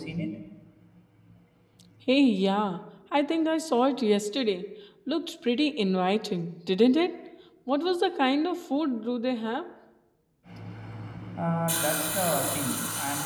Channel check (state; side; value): identical; both; correlation 1.00